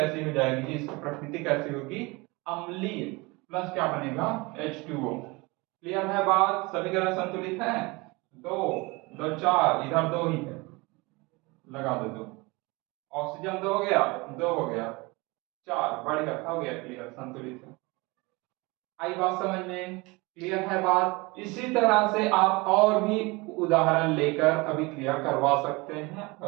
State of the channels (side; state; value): left; quieter; 24.9 dB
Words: हो जाएगी, इसकी प्रकृति कैसी होगी, अम्लीय, प्लस क्या बनेगा, H2O। क्लियर है बात, समीकरण संतुलित है, दो दो चार, इधर दो ही है, लगा दो दो, ऑक्सीजन 2 हो गया, 2 हो गया, 4, बढ़िया, हो गया, क्लियर, संतुलित है। आई बात समझ में, क्लियर है बात। इसी तरह से आप और भी उदाहरण लेकर अभी क्लियर करवा सकते हैं,